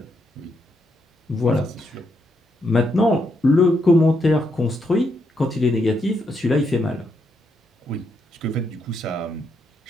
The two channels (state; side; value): normal; both; correlation 0.79